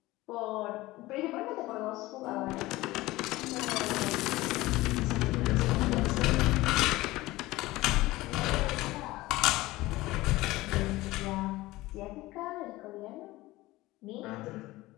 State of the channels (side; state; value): right; quieter; 18.8 dB